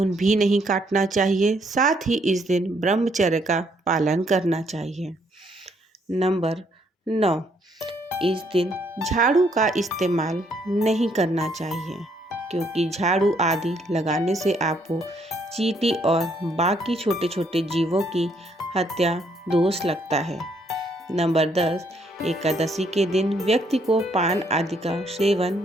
भी नहीं काटना चाहिए। साथ ही इस दिन ब्रह्मचर्य का पालन करना चाहिए। नंबर 9, इस दिन झाड़ू का इस्तेमाल नहीं करना चाहिए, क्योंकि झाड़ू आदि लगाने से आपको चींटी और बाकी छोटे छोटे जीवों की हत्या दोष लगता है। नंबर 10, एकादशी के दिन व्यक्ति को पान आदि का सेवन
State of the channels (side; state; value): both; normal; correlation 0.70